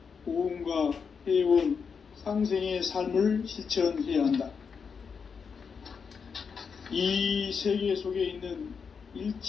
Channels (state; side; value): quieter; right; 6.0 dB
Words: 보응과 회원, 상생의 삶을 실천해야 한다. 이 세계 속에 있는